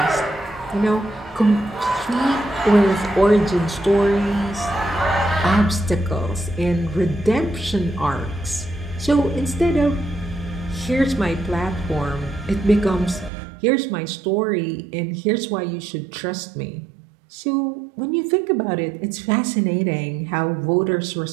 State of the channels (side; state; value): left; drops out; at 13.3 s